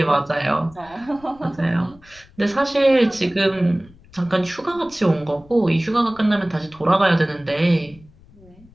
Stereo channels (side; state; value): left; noise; rumble, 26 dB below the sound